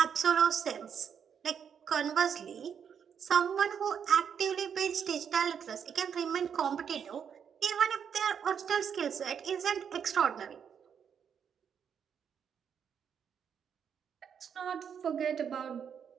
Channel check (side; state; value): left; quieter; 7.6 dB